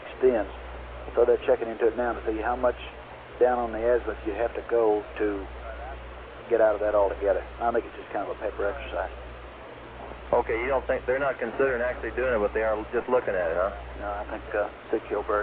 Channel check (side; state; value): both; identical; correlation 1.00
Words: So they're checking into it now to see how much down on the azimuth you have to go to get out of that altogether. I think it's just kind of a paper exercise. Okay, you don't think they're not considering actually doing it, but they are just looking at it, huh? No, I think Sig